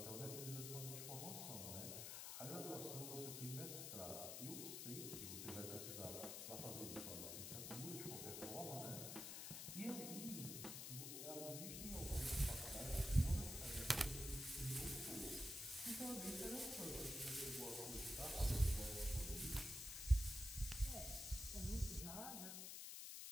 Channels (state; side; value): noise; left; hiss, 5 dB below the sound